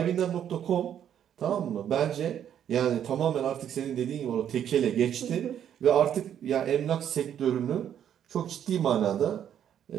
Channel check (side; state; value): left; quieter; 9.6 dB